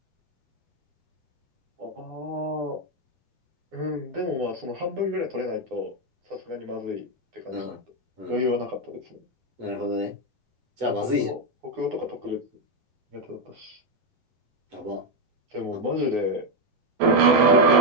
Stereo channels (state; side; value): late; left; 7.9 ms